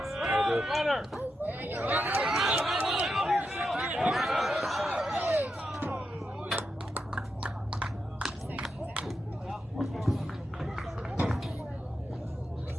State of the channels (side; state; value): both; normal; correlation 0.87